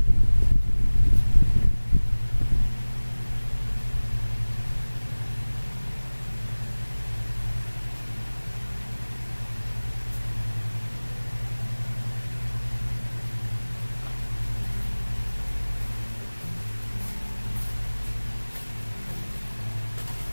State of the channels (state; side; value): inverted; both; correlation -1.00